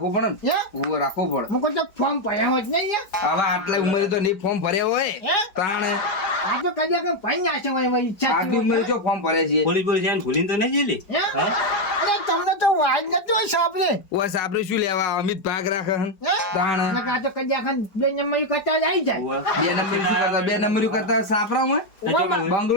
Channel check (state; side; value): late; right; 5.0 ms